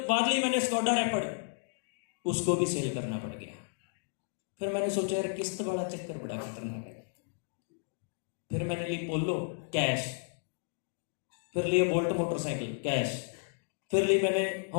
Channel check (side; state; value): right; silent; digital silence